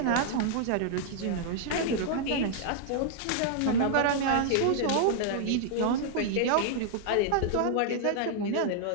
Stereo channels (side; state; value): both; different; correlation -0.01